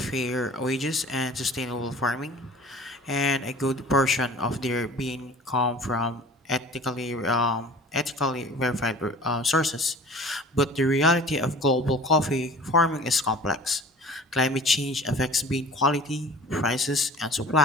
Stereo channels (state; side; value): normal; both; correlation 0.43